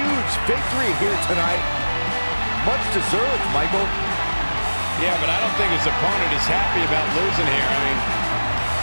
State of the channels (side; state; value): both; inverted; correlation -1.00